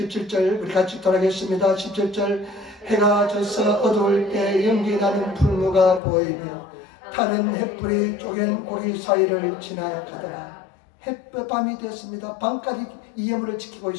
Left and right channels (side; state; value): right; drops out; at 6.0 s